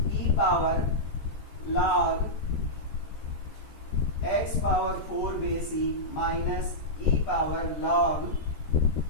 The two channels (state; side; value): late; right; 14 ms